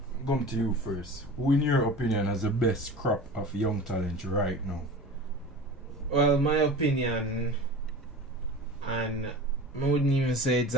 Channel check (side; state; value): both; normal; correlation 0.36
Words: come to you first. Who, in your opinion, has the best crop of young talent right now? Well, my opinion, and I wouldn't even say it's